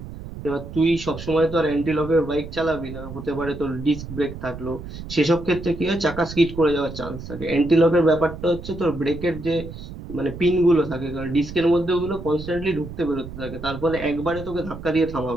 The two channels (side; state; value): right; noise; rumble, 11 dB below the sound